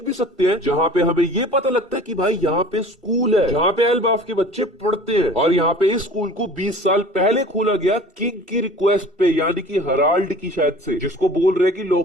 भी सकते हैं, जहाँ पे हमें ये पता लगता है कि भाई यहाँ पे स्कूल है जहाँ पे एल्बाफ के बच्चे पढ़ते हैं। और यहाँ पे इस स्कूल को 20 साल पहले खोला गया किंग की रिक्वेस्ट पे, यानी कि हराल्ड की शायद से, जिसको बोल रहे कि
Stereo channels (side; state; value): both; normal; correlation 0.44